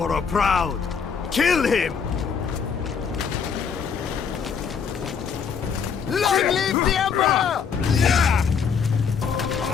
proud! Kill him! Long live the Emperor!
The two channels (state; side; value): quieter; right; 6.4 dB